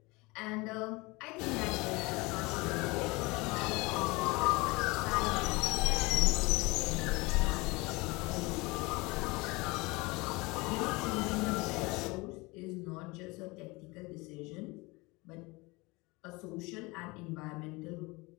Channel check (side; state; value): right; quieter; 24.5 dB